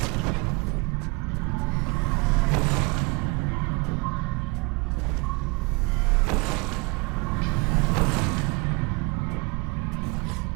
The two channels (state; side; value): quieter; left; 28.8 dB